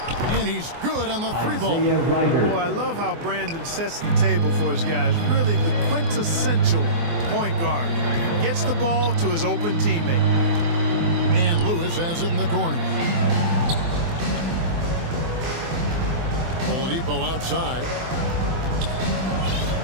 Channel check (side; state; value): left; late; 24 ms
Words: And he's good on the 3-ball. Isaiah Ryder. Boy, I love how Brandon sets the table for his guys. Really the quintessential point guard. Gets the ball to his open teammate. And Lewis has it in the corner. Oladipo outside.